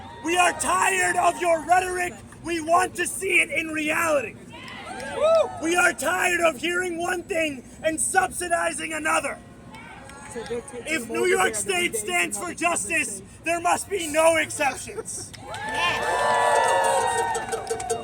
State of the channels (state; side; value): identical; both; correlation 1.00